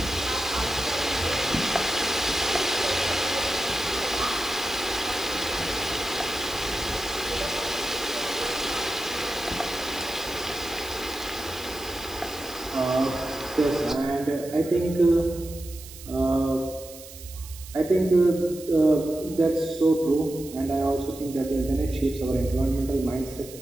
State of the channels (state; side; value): noise; right; hiss, 16 dB below the sound